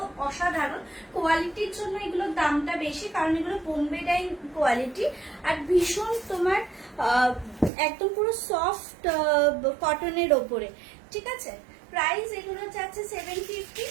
অসাধারণ। কোয়ালিটির জন্য এগুলোর দামটা বেশি, কারণ এগুলো বোম্বে ডাইং কোয়ালিটি আর ভীষণ তোমার একদম পুরো সফট কটনের ওপরে, ঠিক আছে। প্রাইস এগুলো যাচ্ছে 750,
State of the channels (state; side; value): drops out; left; at 7.7 s